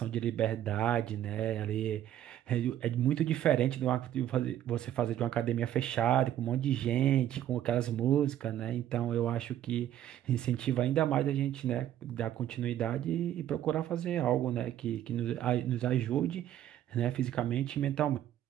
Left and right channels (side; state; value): left; quieter; 11.8 dB